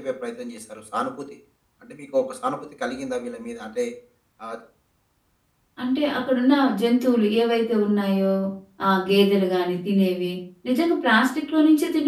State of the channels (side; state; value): both; identical; correlation 1.00